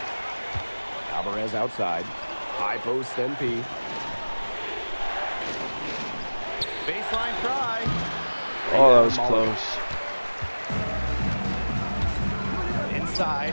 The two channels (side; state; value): both; inverted; correlation -1.00